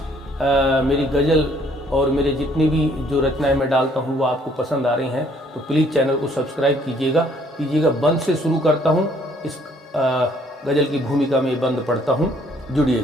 मेरी गज़ल और मेरे जितनी भी जो रचनाएं मैं डालता हूं वो आपको पसंद आ रही हैं, तो प्लीज़ चैनल को सब्सक्राइब कीजिएगा। बंद से शुरू करता हूं, इस गज़ल की भूमिका में बंद पढ़ता हूं,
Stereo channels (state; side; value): normal; both; correlation 0.63